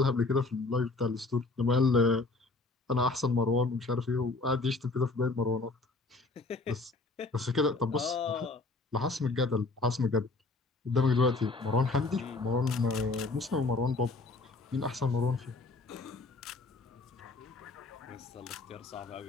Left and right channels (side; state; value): right; quieter; 3.5 dB